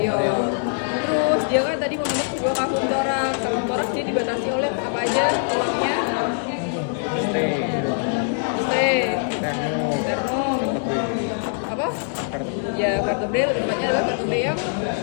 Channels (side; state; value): right; silent; 62 dB below the other